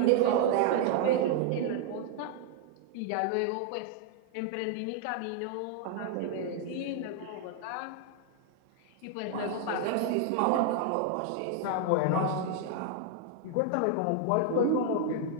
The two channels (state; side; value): different; both; correlation 0.00